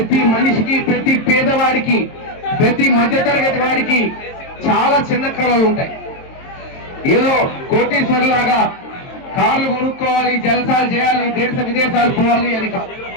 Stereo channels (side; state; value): right; late; 22 ms